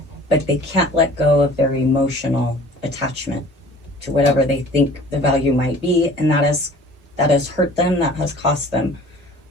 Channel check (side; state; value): both; normal; correlation 0.48